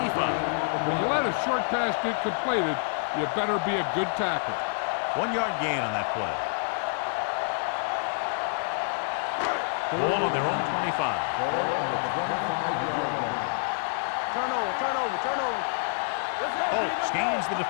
When you let a short pass get completed, you better be a good tackle. 1-yard gain on that play. Ball on their own 25. Turnover. Let's go, Holt scans the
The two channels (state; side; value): silent; right; digital silence